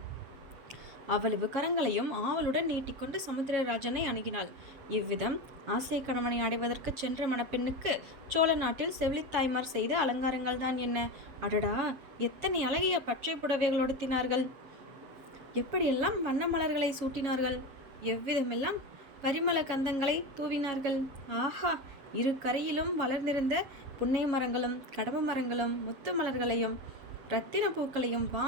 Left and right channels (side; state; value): left; late; 7.3 ms